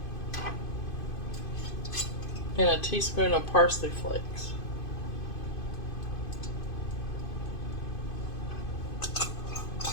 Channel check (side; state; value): right; late; 2.5 ms